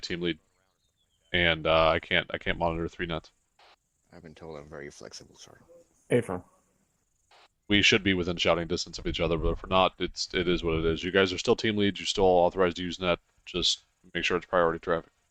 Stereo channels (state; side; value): identical; both; correlation 1.00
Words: lead, and I can't monitor 3 nets. I've been told I'm very flexible, sorry. Affirm. We should be within shouting distance of each other, but if we're not, it is what it is. You guys are still team leads. You're still authorized to use net. Just make sure it's priority traffic.